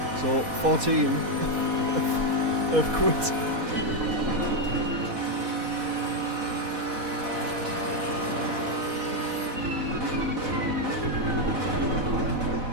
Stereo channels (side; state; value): left; late; 4.1 ms